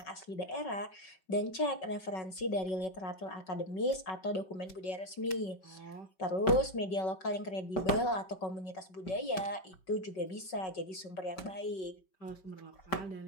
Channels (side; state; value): right; late; 5.4 ms